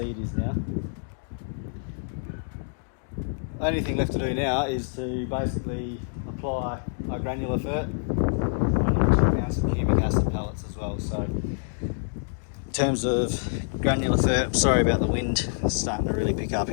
is now. Only thing left to do now is to basically apply my granular fert. I'm going to chuck down some humic acid pellets as well. So in terms of granular fert, sorry about the wind, it's starting to really pick up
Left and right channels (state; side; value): silent; right; digital silence